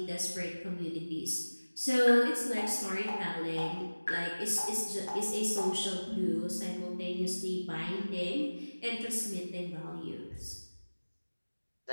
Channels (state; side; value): inverted; both; correlation -1.00